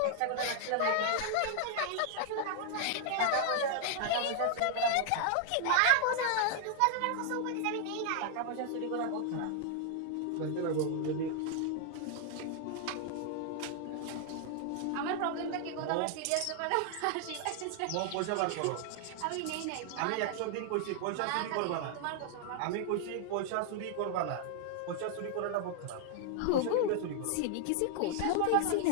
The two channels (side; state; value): both; different; correlation 0.00